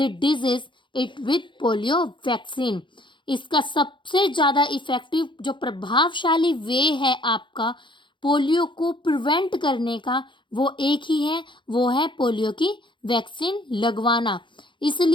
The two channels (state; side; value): late; right; 0.23 ms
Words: disease it with polio vaccine. इसका सबसे ज़्यादा इफेक्टिव जो प्रभावशाली वे है आपका पोलियो को प्रिवेंट करने का वो एक ही है, वो है पोलियो की वैक्सीन लगवाना।